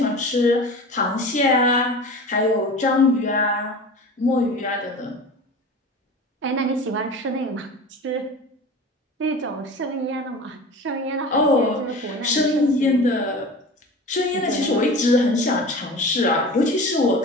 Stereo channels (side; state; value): both; normal; correlation 0.35